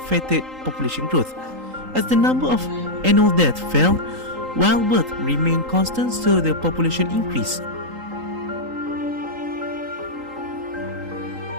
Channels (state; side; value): late; left; 3.8 ms